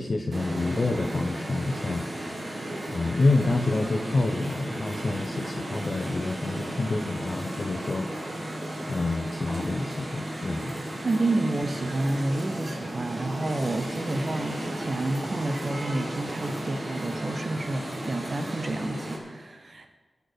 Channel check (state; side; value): normal; both; correlation 0.93